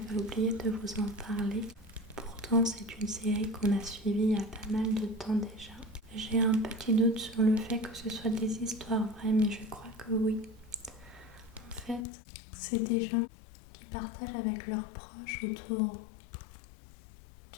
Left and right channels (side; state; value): right; drops out; at 12.1 s